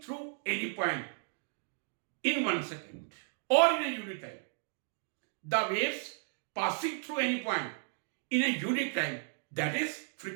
through any point in 1 second or in a unit time. The waves passing through any point in a unit time, that is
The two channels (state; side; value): silent; left; digital silence